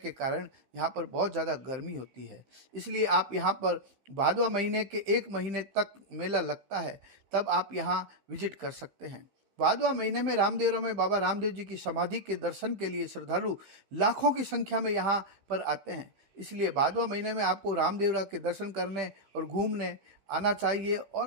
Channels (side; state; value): left; late; 15 ms